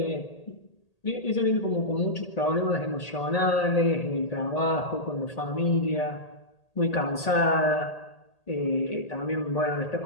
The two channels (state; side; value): late; right; 1.8 ms